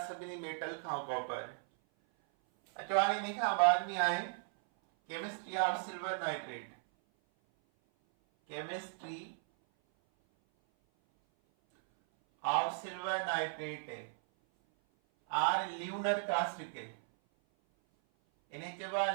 सभिनी मेटल खां कॉपर। अचो हाणे इन खां बाद में आहे chemistry of silver nitrate. Chemistry of silver nitrate or lunar caustic. इन्हें चइबो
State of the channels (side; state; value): left; silent; 53 dB below the other